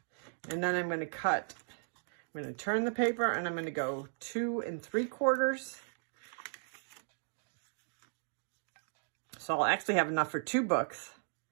And then I'm going to cut. I'm going to turn the paper and I'm going to go 2 3/4. So I'll actually have enough for 2 books,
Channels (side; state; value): left; silent; digital silence